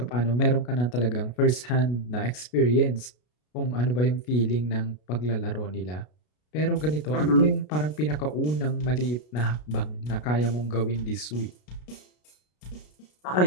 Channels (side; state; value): right; late; 33 ms